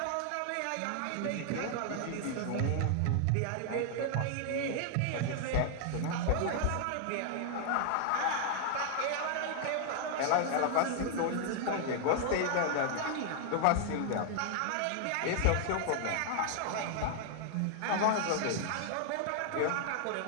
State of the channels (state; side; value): different; both; correlation 0.00